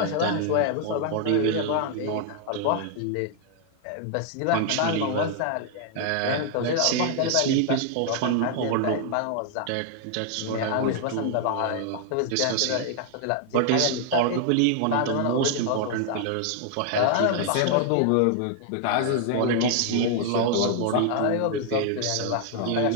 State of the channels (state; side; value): different; both; correlation 0.00